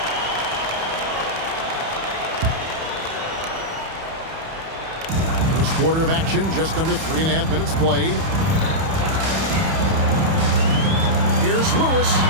First quarter of action, just under 3.5 minutes played. Here's Lewis.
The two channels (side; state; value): left; late; 31 ms